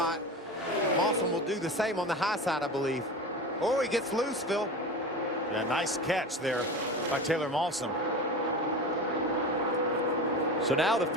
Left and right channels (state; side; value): normal; both; correlation 0.29